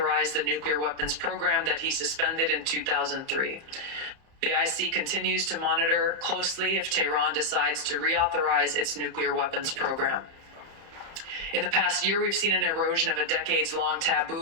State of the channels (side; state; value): left; late; 30 ms